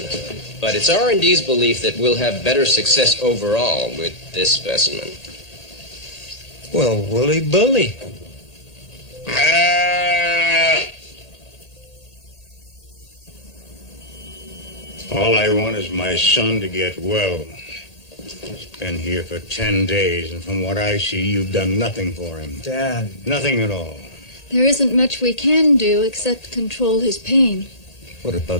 But it's R&D's belief that we'll have better success overall with this specimen. Well, woolly bully. All I want is my son to get well. He's been here for 10 days, and from what I see, you've done nothing for him. Dad. Nothing at all. There isn't much we can do except control his pain. What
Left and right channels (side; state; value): right; late; 1.8 ms